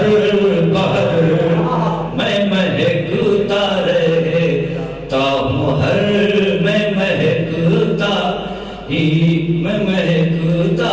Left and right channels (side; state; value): both; identical; correlation 1.00